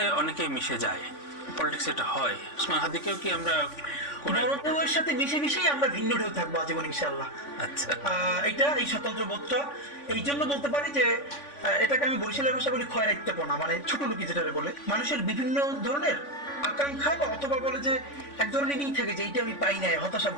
অনেকে মিশে যায়, পলিটিক্স এটা হয়। ওসমান হাদিকেও কি আমরা বড় ঢেউয়ের সাথে মিশে মিশেই আমরা ভিন্ন ঢেউ থাকবো আজীবন ইনশাআল্লাহ। আচ্ছা, এটা এই স্বতন্ত্র বোধটা এই জন্য বলতে পারি যে এটাকে আমি বরিশালের ভাষা বলি খয়রাইত্যপনা, মানে ছোট লোকি যেটা বলে। মানুষের বিভিন্ন ধরনের আকাঙ্ক্ষা বা অথবা বলে যে এক ধরনের ই থাকে যে এইটা আমি পাই নাই, হতাশা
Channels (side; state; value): right; late; 3.5 ms